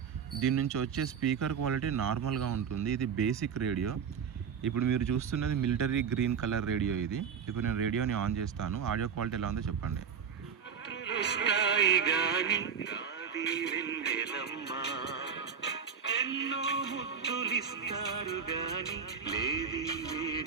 దీని నుంచి వచ్చే స్పీకర్ క్వాలిటీ నార్మల్గా ఉంటుంది. ఇది బేసిక్ రేడియో. ఇప్పుడు మీరు చూస్తున్నది మిలిటరీ గ్రీన్ కలర్ రేడియో. ఇది ఇప్పుడు నేను రేడియోని ఆన్ చేస్తాను. ఆడియో క్వాలిటీ ఎలా ఉందో చెప్పండి.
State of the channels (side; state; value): left; quieter; 6.8 dB